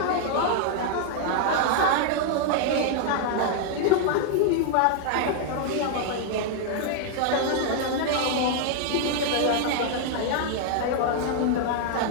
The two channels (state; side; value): different; both; correlation 0.00